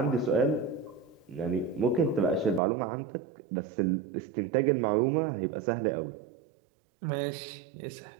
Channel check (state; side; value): drops out; left; at 2.6 s